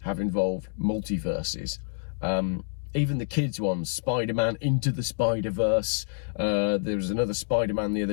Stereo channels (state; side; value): silent; right; 60 dB below the other